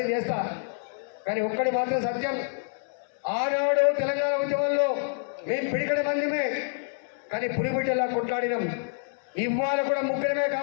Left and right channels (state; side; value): silent; right; digital silence